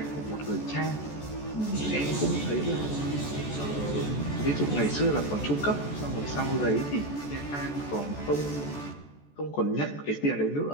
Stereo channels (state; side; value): late; right; 14 ms